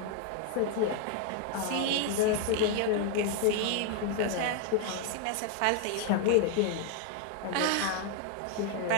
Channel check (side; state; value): both; different; correlation 0.00